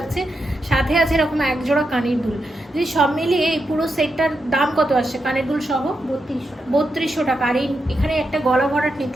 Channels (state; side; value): normal; both; correlation 0.85